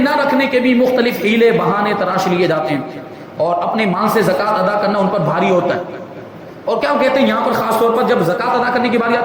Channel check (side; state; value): both; identical; correlation 1.00